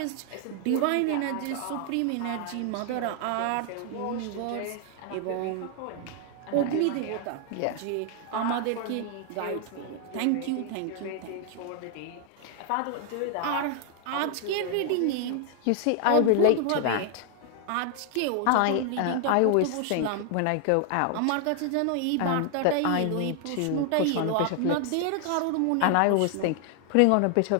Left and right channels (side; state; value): both; different; correlation 0.00